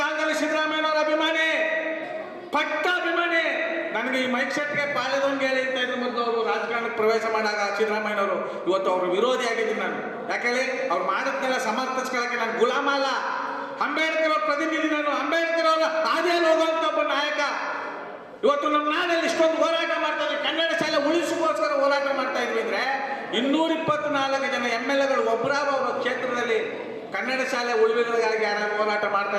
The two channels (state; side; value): identical; both; correlation 1.00